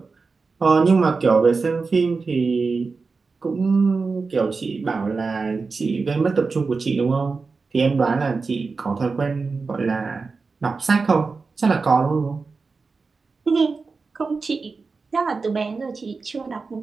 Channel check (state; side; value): quieter; left; 4.4 dB